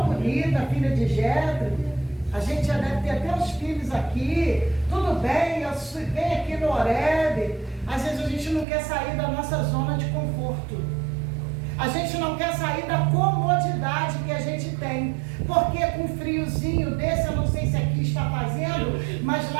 bonita, filha de Jetro. A gente já deve ter até os filhos aqui. Tudo bem, eu venho aqui no Horebe. Às vezes a gente não quer sair da nossa zona de conforto. A gente não quer sair da comodidade que a gente tem. Porque com friozinho desse, eu não sei se aqui está fazendo, mas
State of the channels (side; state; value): left; drops out; at 8.7 s